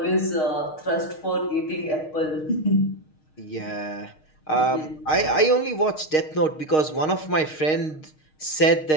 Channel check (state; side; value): late; right; 6.5 ms